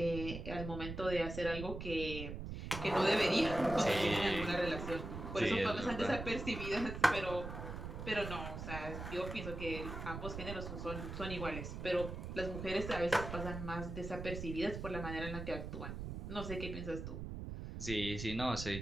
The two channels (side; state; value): right; noise; rumble, 7 dB below the sound